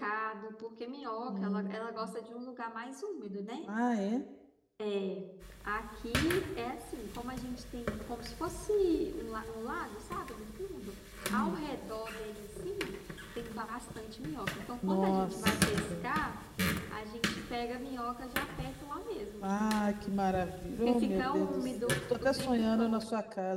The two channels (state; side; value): identical; both; correlation 1.00